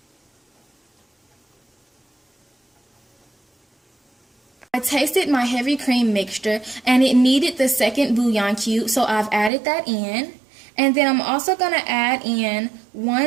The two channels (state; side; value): drops out; left; at 9.5 s